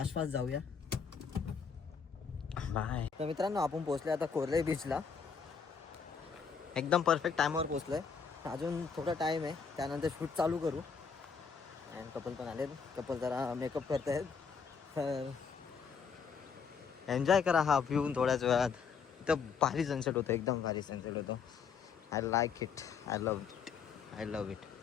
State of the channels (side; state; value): right; quieter; 6.0 dB